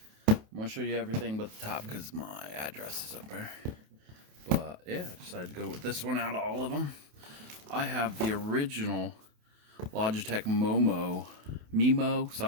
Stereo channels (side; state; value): left; late; 28 ms